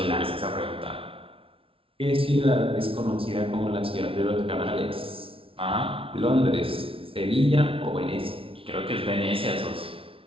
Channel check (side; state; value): left; late; 0.26 ms